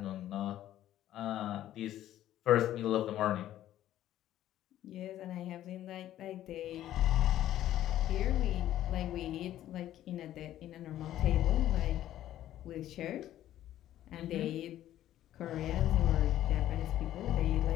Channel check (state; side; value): quieter; right; 12.8 dB